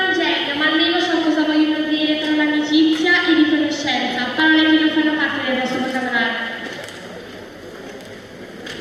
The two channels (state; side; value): identical; both; correlation 1.00